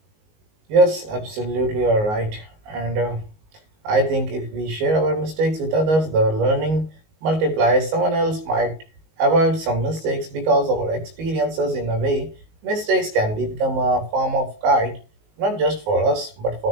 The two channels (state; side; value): late; left; 19 ms